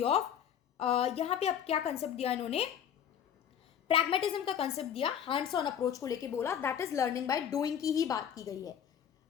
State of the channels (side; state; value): right; quieter; 8.9 dB